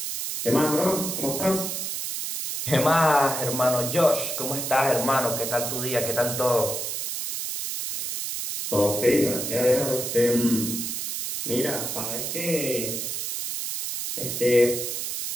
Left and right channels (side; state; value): right; noise; hiss, 4 dB below the sound